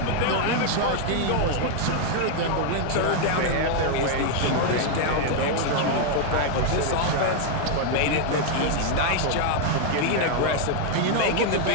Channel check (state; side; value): different; both; correlation 0.00